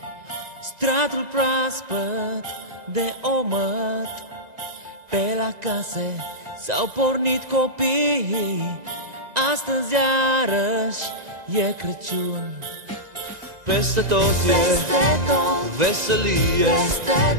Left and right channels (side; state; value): left; late; 1.9 ms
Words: stratul proaspăt de omăt. Pe la case s-au pornit copiii, astăzi iarăși e Crăciun. Peste tot e veselie,